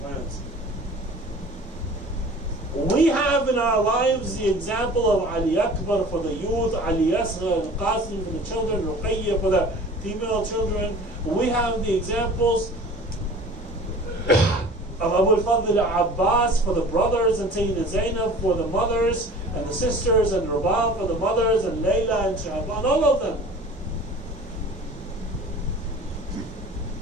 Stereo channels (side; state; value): both; normal; correlation 0.43